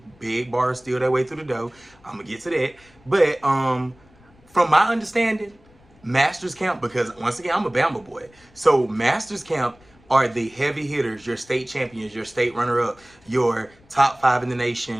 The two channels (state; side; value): noise; left; rumble, 29 dB below the sound